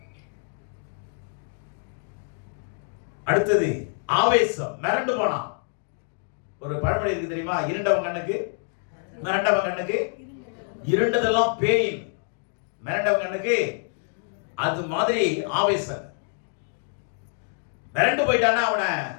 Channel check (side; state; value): right; silent; 61 dB below the other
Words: அடுத்தது ஆவேசம், மிரண்டு போனான். ஒரு பழமொழி இருக்கு தெரியுமா? இருண்டவன் கண்ணுக்கு மிரண்டவன் கண்ணுக்கு இருண்டதெல்லாம் பேய், மிரண்டவன் கண்ணுக்கு அது மாதிரி ஆவேசம். மிரண்டு போயிட்டானா அவனை